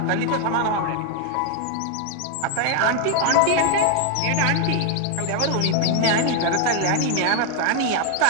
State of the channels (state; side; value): different; both; correlation 0.00